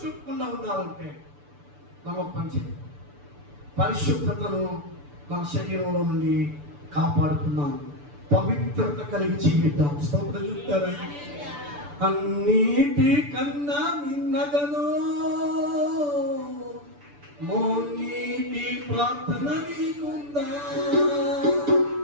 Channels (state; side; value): late; left; 6.9 ms